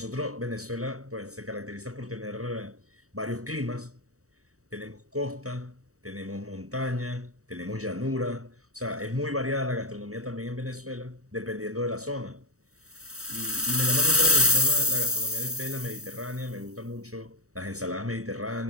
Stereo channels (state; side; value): late; left; 0.65 ms